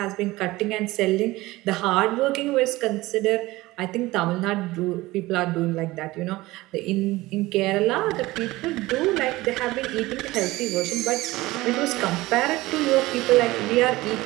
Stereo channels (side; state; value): left; quieter; 19.2 dB